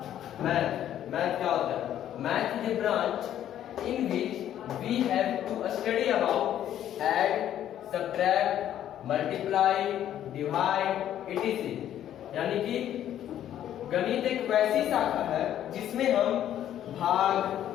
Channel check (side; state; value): right; quieter; 11.1 dB